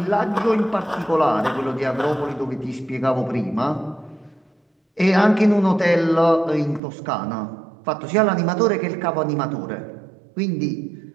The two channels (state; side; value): drops out; left; at 6.8 s